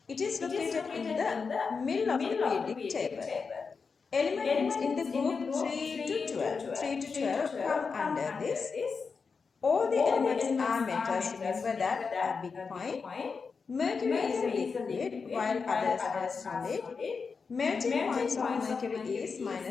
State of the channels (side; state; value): right; quieter; 5.1 dB